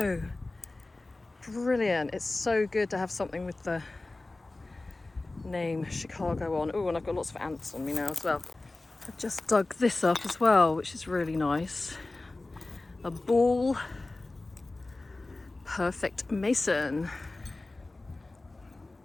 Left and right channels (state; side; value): quieter; right; 3.1 dB